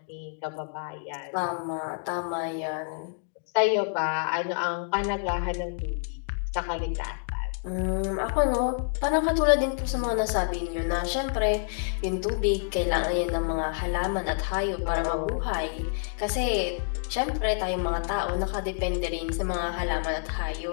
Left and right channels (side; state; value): right; silent; digital silence